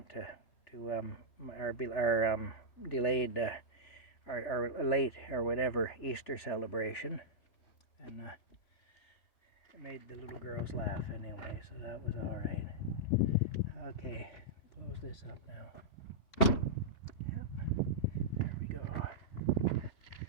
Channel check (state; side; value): late; right; 3.4 ms